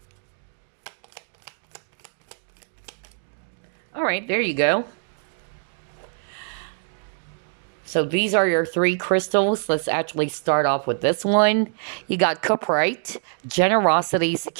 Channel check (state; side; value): silent; left; digital silence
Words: All right, there you go. So these are your 3 crystals. Let's actually start off with this one. You got Cuprite, generosity,